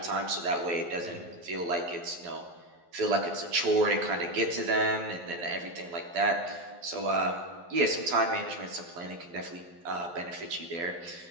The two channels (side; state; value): left; late; 11 ms